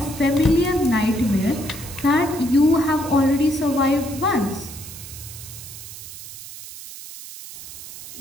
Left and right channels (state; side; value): noise; right; hiss, 13 dB below the sound